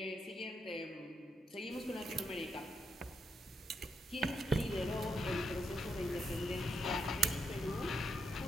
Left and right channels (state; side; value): normal; both; correlation 0.80